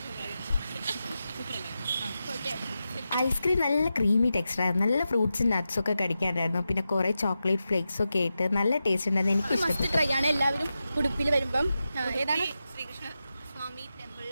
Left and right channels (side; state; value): both; inverted; correlation -0.91